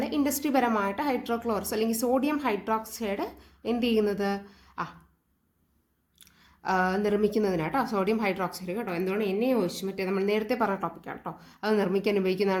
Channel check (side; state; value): both; identical; correlation 1.00